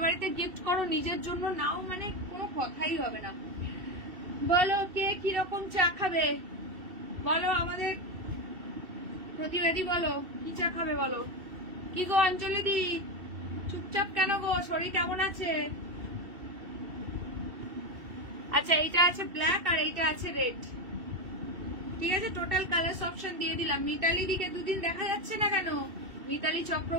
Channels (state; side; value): late; left; 2.7 ms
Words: বাড়িতে গিফট করো, নিজের জন্য নাও, মানে কোনো কথাই হবে না। বলো কে কিরকম চা খাবে, বলো আমাদের প্রতিবাদী, বলো কি চা খাবে বলো। কি গো অঞ্জলি দি, চুপচাপ কেন গো, শরীর কেমন আছে? আচ্ছা, এইটা আছে ব্ল্যাক আর এইটা আছে রেড, ঠিক আছে। টোটাল কালার অপশন দিয়ে দিলাম। মিতালি দিকে দুদিন দেখা যাচ্ছে না কেন? মিতালি